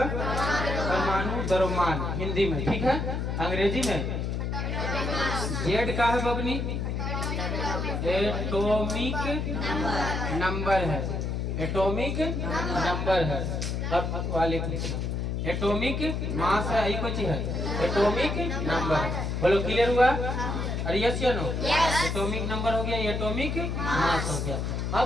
परमाणु द्रव्यमान हिंदी में, ठीक है। अंग्रेजी में जेड का है बबनी, एटॉमिक नंबर है, एटॉमिक नंबर है। अब वाले एटॉमिक मास है, यही कुछ है, एटॉमिक नंबर है। बोलो क्लियर हुआ? अरे यस या नो? एटॉमिक नंबर हो गया, एटॉमिक मास हो गया।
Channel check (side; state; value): left; noise; hum, 1 dB below the sound